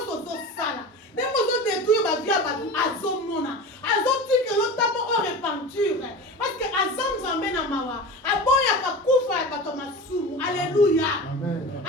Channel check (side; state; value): both; normal; correlation 0.31